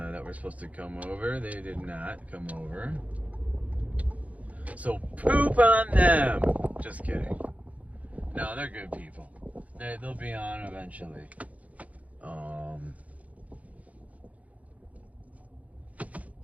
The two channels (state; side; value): late; left; 0.069 ms